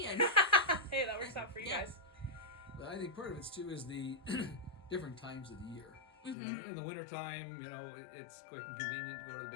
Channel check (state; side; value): drops out; right; at 6.4 s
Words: And hey, that works out for you guys. But I think part of it too is the different times of the year. In the wintertime, it's quick and convenient to go to the